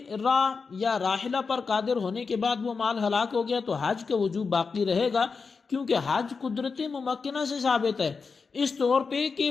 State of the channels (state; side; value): quieter; right; 4.9 dB